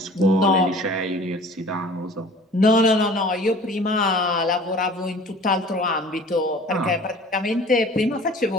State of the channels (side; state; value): both; normal; correlation 0.46